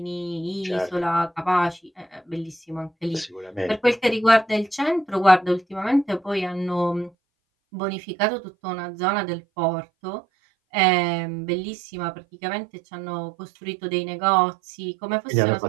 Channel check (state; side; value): drops out; left; at 7.1 s